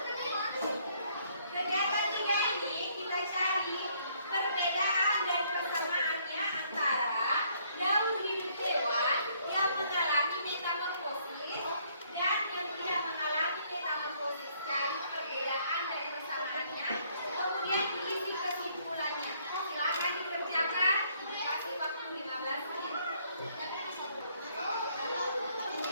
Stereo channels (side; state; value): both; inverted; correlation -0.66